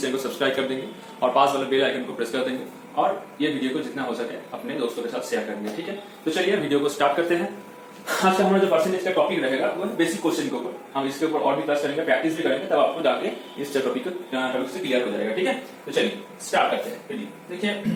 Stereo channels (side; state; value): both; identical; correlation 1.00